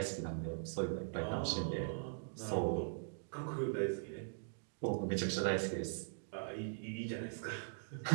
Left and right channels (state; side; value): silent; left; digital silence